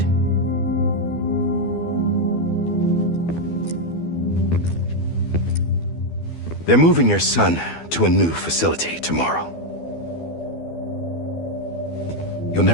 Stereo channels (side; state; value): right; late; 12 ms